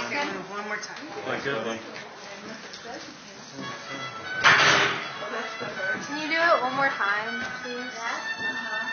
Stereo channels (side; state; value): both; identical; correlation 1.00